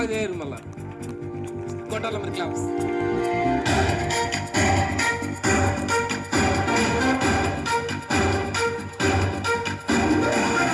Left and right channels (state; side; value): identical; both; correlation 1.00